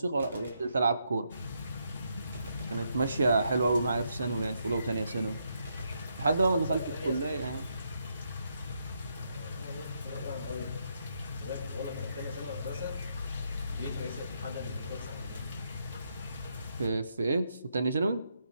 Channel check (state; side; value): inverted; both; correlation -0.78